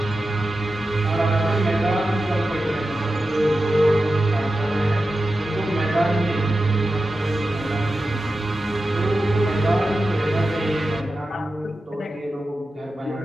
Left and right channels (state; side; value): normal; both; correlation 0.92